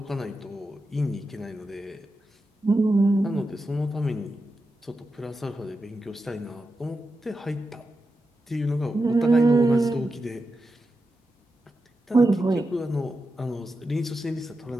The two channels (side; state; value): both; normal; correlation 0.89